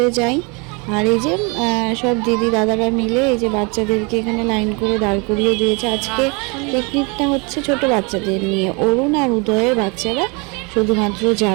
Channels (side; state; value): left; quieter; 30.6 dB